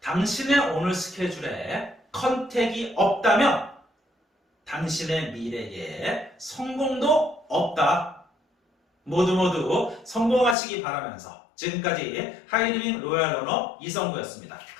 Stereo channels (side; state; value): right; drops out; at 10.6 s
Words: 당신의 오늘 스케줄에 컨택이 없다면 당신의 미래에 성공도 없다. 모두 성공하시기 바라면서 지금까지 하이리빙 로얄 러너 이성구였습니다.